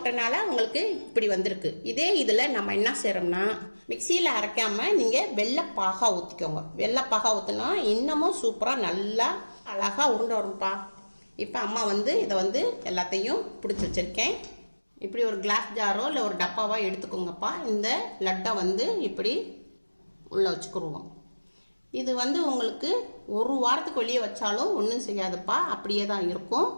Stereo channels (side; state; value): both; inverted; correlation -1.00